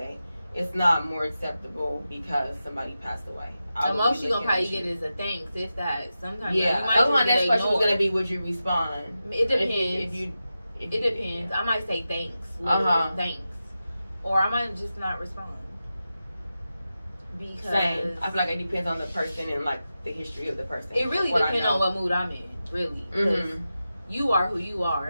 It's not more acceptable because somebody passed away. The most you're gonna probably get is a thanks, if that. Sometimes that was my next question was gonna be, would you respond? It depends. It depends. I might say thanks. Thanks. Or I might just not respond. Because same. I feel like it depends on the person and like the history of the person. It really depends on what mood I'm in, really. You are who you are,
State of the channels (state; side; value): inverted; both; correlation -0.91